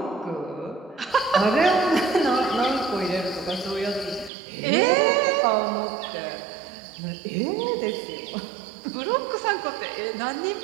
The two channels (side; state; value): left; drops out; at 4.3 s